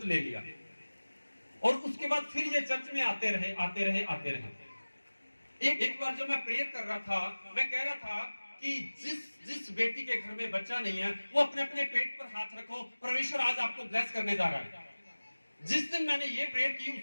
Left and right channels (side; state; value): both; inverted; correlation -1.00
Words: ले लिया और उसके बाद फिर ये चर्च में आते रहे, आते रहे, आते रहे। एक बार जब मैं प्रेयर कर रहा था, मैं कह रहा था कि जिस बेटी के घर में बच्चा नहीं है वो अपने अपने पेट पर हाथ रखो, परमेश्वर आज आपको ब्लेस करने जा रहा है। जिस दिन मैंने ये प्रेयर की